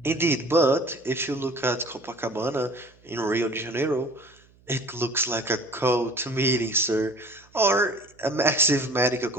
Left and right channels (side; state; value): right; noise; hum, 30 dB below the sound